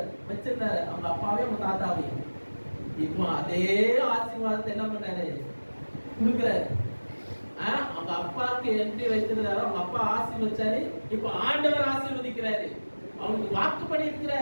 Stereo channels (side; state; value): both; inverted; correlation -1.00